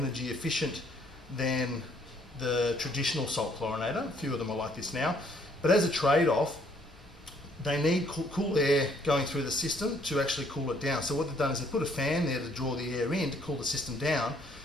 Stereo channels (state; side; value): normal; both; correlation 0.65